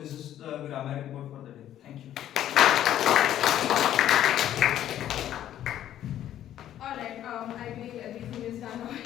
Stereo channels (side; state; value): right; quieter; 11.6 dB